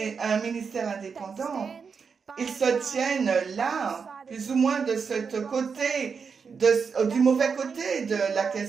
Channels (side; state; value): left; quieter; 5.7 dB